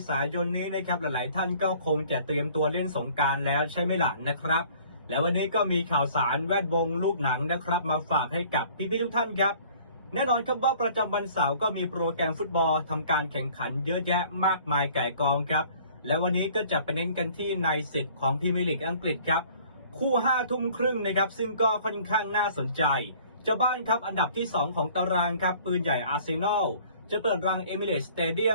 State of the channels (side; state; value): both; inverted; correlation -0.53